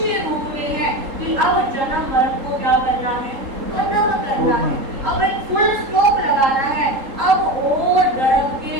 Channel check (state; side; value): late; left; 3.8 ms